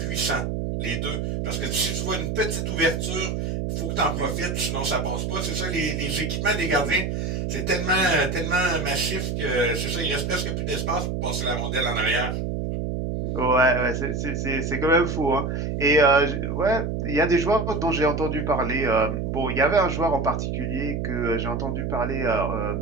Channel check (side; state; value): right; noise; hum, 2 dB below the sound